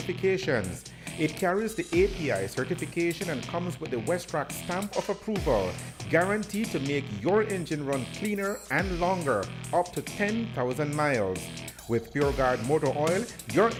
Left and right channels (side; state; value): both; identical; correlation 1.00